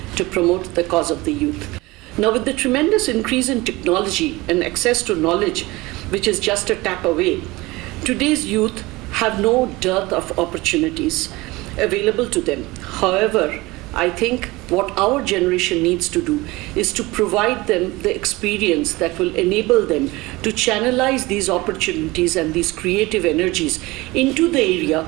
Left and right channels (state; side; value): quieter; left; 21.3 dB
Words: to promote the cause of the youth. Now, with the tremendous increase in technology and access to knowledge, which is just a tap away, today's youth have no dearth of opportunities available to them. However, I think what our generation needs to do is to provide them the experience that will enable them to channelize these opportunities and these creative energies into the area